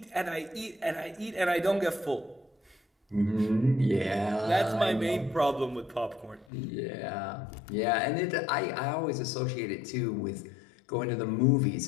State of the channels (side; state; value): right; drops out; at 6.5 s